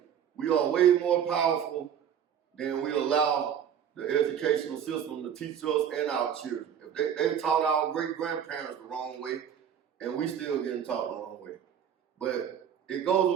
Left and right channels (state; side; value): quieter; left; 8.7 dB